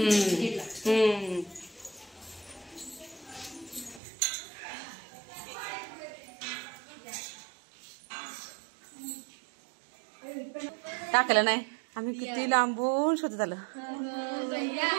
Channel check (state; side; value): drops out; left; at 4.0 s